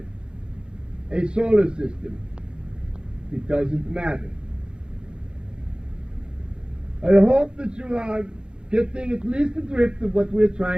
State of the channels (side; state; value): left; late; 0.050 ms